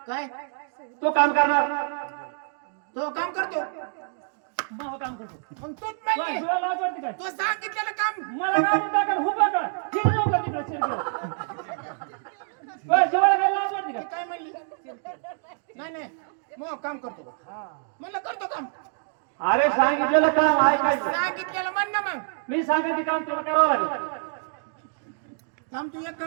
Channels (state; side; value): silent; left; digital silence